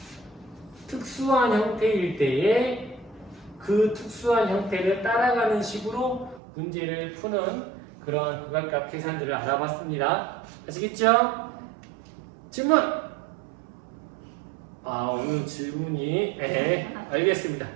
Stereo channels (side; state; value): left; drops out; at 6.4 s